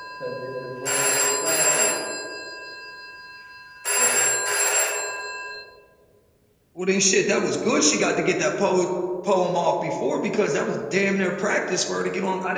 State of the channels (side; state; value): both; identical; correlation 1.00